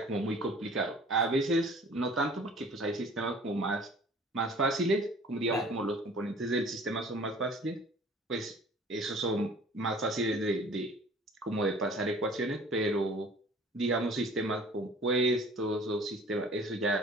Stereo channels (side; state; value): both; normal; correlation 0.49